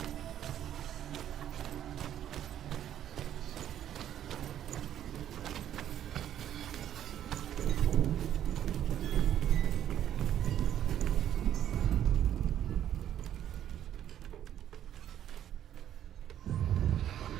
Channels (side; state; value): left; quieter; 10.8 dB